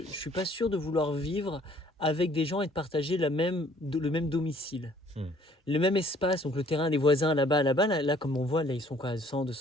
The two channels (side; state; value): both; normal; correlation 0.59